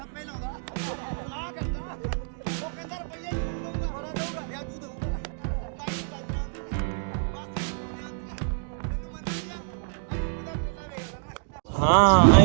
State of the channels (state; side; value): silent; left; digital silence